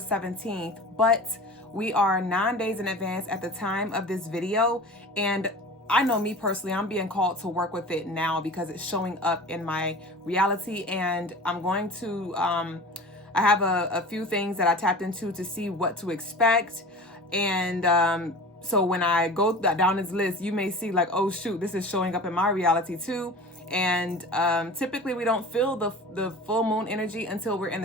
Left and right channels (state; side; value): normal; both; correlation 0.37